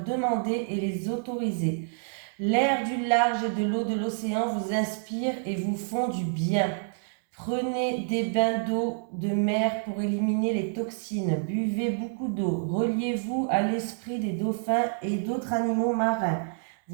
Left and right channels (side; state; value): left; silent; digital silence